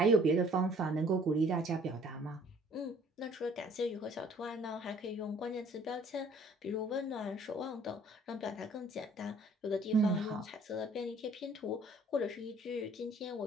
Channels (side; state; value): both; normal; correlation 0.57